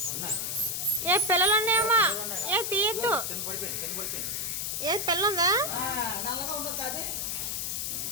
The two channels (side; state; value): left; noise; hiss, 2 dB below the sound